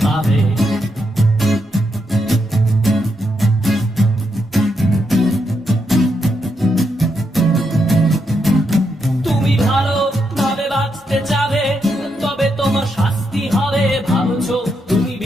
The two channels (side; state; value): both; normal; correlation 0.81